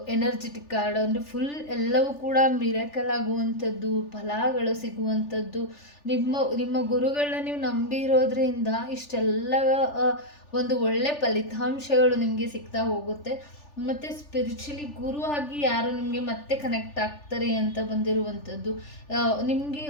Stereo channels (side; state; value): right; late; 3.4 ms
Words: ಎನರ್ಜೆಟಿಕ್ ಕಾರ್ಡ್ ಅಂದರೆ ಫುಲ್ ಎಲ್ಲವೂ ಕೂಡ ಮಿರಾಕಲ್ ಆಗುವಂಥದ್ದು, ಫಲಗಳು ಸಿಗುವಂಥದ್ದು. ನಿಮ್ಮ ಗುರುಗಳನ್ನ ನೀವು ನಂಬಿರೋದ್ರಿಂದ ಇಷ್ಟೆಲ್ಲ ಒಂದು ಒಳ್ಳೆ ಫಲಿತಾಂಶಗಳು ನಿಮಗೆ ಸಿಗ್ತಾ ಹೋಗುತ್ತೆ. ಮತ್ತು ಸ್ಪಿರಿಚುಲಿ ಗುರು ಆಗಿ ಯಾರು ನಿಮಗೆ ಮತ್ತೆ ಕನೆಕ್ಟ್ ಆಗ್ತಾರೆ ಅಂತ ಬಂದಿರುವಂಥದ್ದು. ನಿಮಗೆ